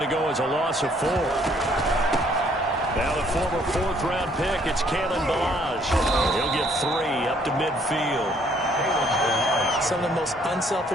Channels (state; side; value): normal; both; correlation 0.64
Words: to go as a loss of 4. Now the former 4th-round pick, it's Kalen Ballage. He'll get 3 up to midfield. Some of the most